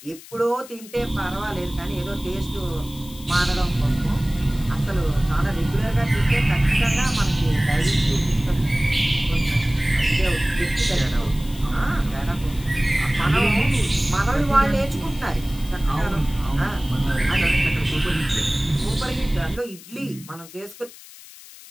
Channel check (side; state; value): left; noise; hiss, 19 dB below the sound